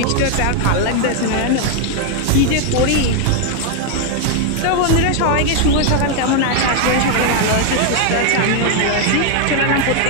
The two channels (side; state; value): both; different; correlation 0.01